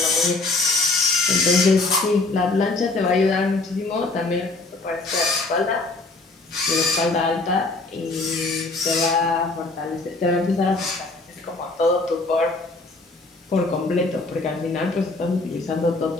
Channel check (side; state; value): right; quieter; 3.3 dB